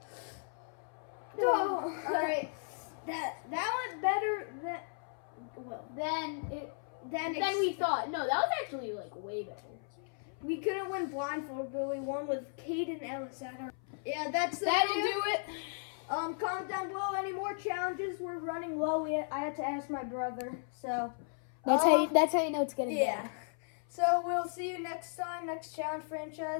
Oh, all right. That went better than we thought. No, that was actually way better. we couldn't win blindfold, but we won with Caden Ellis at our. Yeah, that'll do it. Comment down below any more challenges. We're running low. I had to ask my brother, so That's how you know it's getting yeah. So we'll see you next time, next challenge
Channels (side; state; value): right; silent; 54 dB below the other